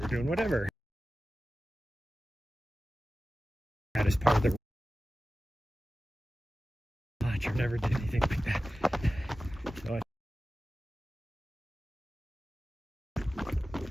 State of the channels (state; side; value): normal; both; correlation 0.95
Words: doing whatever. That is part of the watch. I never did anything like that. So